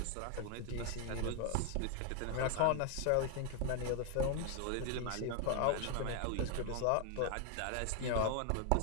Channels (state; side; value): different; both; correlation 0.00